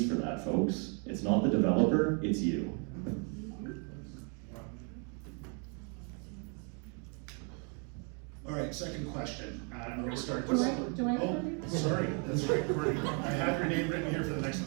for that, folks? It's not the developer, it's you. All right, second question. I'm going to start. Do I Oh, sorry, that's right, Kourtney. I have your name written here for the next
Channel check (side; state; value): left; quieter; 37.8 dB